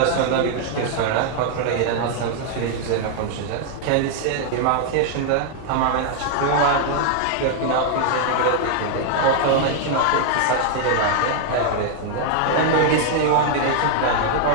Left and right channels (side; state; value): both; different; correlation 0.00